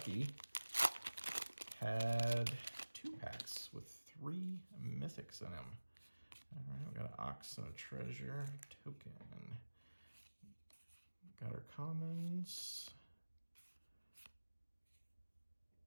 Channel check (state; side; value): inverted; both; correlation -1.00